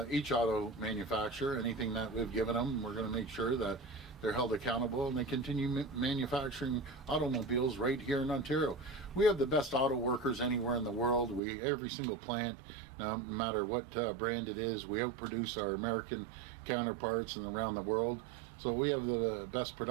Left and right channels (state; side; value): drops out; left; at 11.4 s